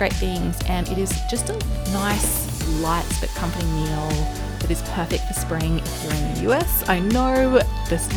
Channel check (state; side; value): identical; both; correlation 1.00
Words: things. And it is just a nice, light but comforting meal that is perfect for spring if you're in the US. I know this